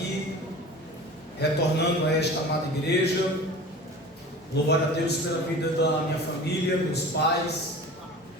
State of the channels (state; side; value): normal; both; correlation 0.38